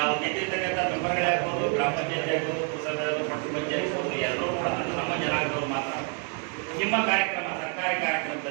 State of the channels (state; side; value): quieter; left; 39.2 dB